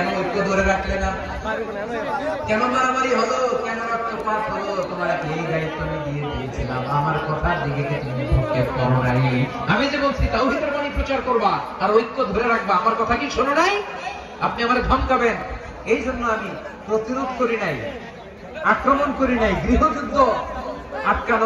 ঐক্য ধরে রাখলে না, কেন মারামারি হলো, কেন রক্তপাত হলো, তোমার এই দায়িত্ব আমি দিয়ে দিয়েছিলাম, আমার কথার দিকে কি তুমি ভ্রুক্ষেপ করো নাই? আমি যে বলছি তাওহীদের বাণী প্রচার করবা আর ঐক্য ধরে রাখবা, আমার কথা কি শোনো নাই? আপনি আমারে ধমকাবেন, এই জন্য আমি প্রতিরোধ করি নাই, আক্রমণ করি নাই, গৃহযুদ্ধ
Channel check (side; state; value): both; identical; correlation 1.00